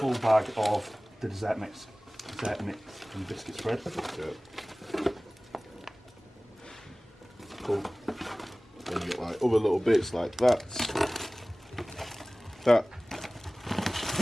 bag of the dessert mix and biscuit spread. Yeah. Cool. Then you get like other little bits like that. That.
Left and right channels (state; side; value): normal; both; correlation 0.98